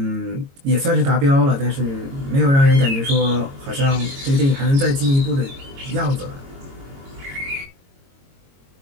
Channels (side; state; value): left; late; 22 ms